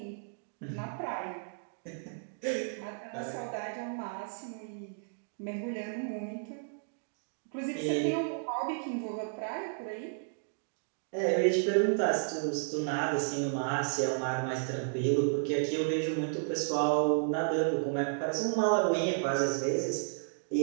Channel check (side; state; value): left; silent; digital silence